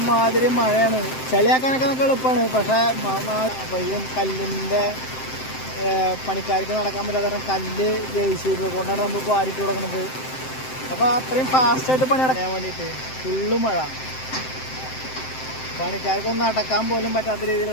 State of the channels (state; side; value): late; right; 7.7 ms